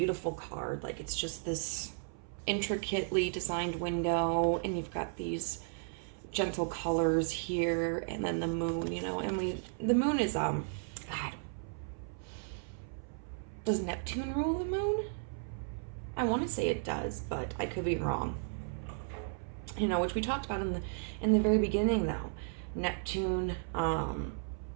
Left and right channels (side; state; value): left; silent; 55 dB below the other